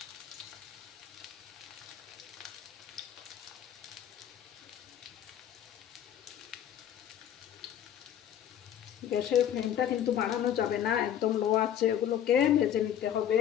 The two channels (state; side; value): quieter; right; 10.1 dB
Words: গ্যাসের ফ্লেমটা কিন্তু বাড়ানো যাবে না, একদম লো আছে। এগুলোকে ভেজে নিতে হবে।